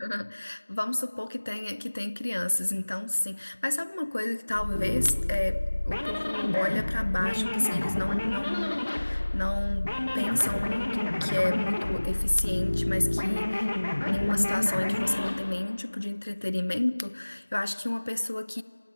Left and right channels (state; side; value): inverted; both; correlation -1.00